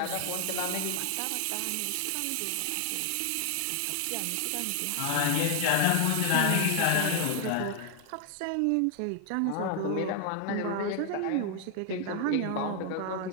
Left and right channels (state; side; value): different; both; correlation 0.00